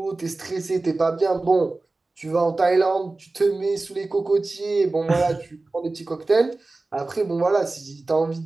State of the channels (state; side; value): quieter; left; 3.3 dB